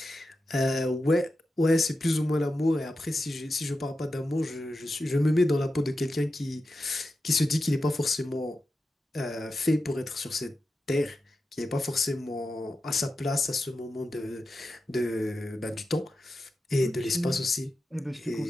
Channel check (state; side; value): normal; both; correlation 0.91